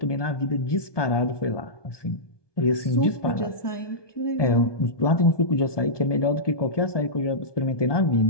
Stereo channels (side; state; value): right; late; 1.2 ms